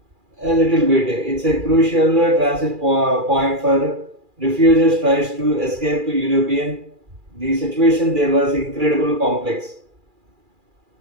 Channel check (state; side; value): late; left; 2.4 ms